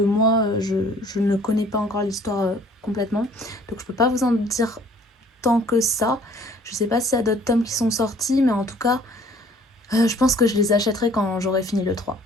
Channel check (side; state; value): both; normal; correlation 0.56